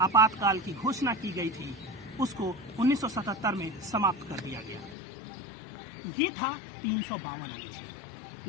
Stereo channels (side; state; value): right; drops out; at 5.0 s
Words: आपातकाल की घोषणा की गई थी, उसको 1977 में समाप्त कर दिया गया। ये था 352 अनुच्छेद।